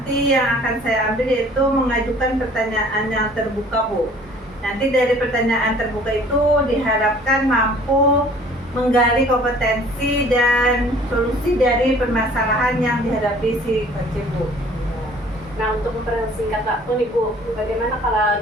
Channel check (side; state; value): both; normal; correlation 0.52